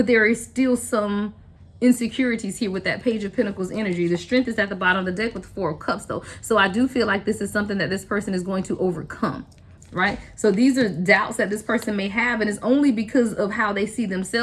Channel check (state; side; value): identical; both; correlation 1.00